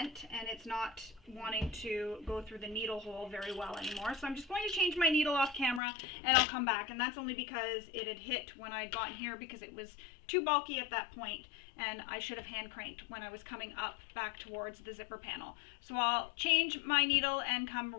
and it's not wanting to go through the needle hole very well anymore. So I'm just going to change my needle off camera and I'll come back. And that's only because it had hit when I got here because it was too bulky at that point and I should have hand cranked when I was coming up back towards the zipper panel. So I'll change my needle and come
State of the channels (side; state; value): right; drops out; at 5.8 s